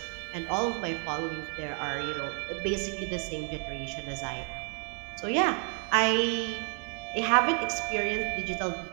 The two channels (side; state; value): left; quieter; 36.7 dB